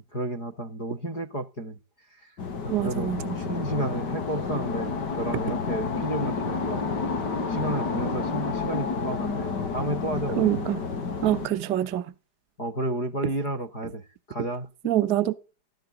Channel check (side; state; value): right; late; 4.9 ms